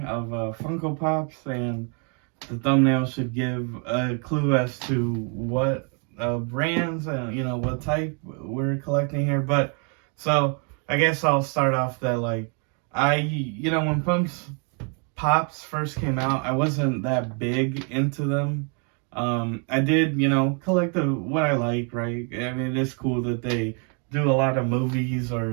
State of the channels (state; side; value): quieter; left; 38.5 dB